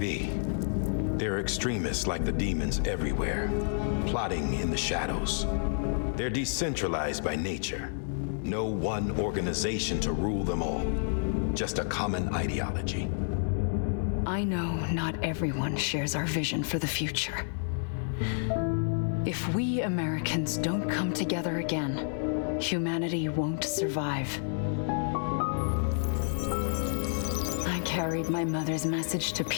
There are extremists like the demons everywhere, plotting in the shadows. They're decentralized by nature. No one organization to rule them all. Just a common ideology. I know not everyone shares our vision for the future. If we Americans don't come together again, humanity won't survive. I carried my mother's message to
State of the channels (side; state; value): right; silent; digital silence